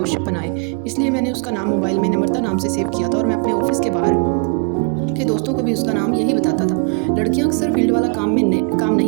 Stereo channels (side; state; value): left; quieter; 38.1 dB